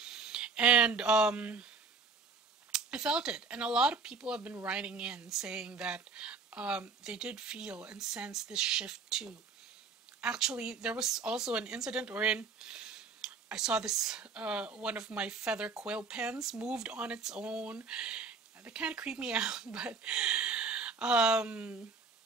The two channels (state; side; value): quieter; left; 4.5 dB